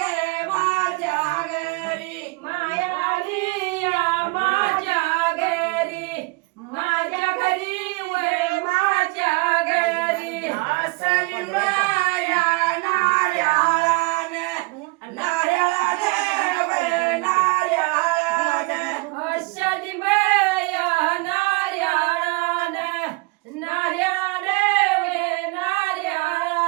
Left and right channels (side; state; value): left; quieter; 26.6 dB